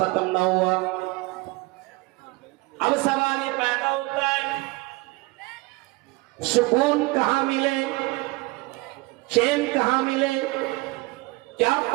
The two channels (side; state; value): left; quieter; 23.6 dB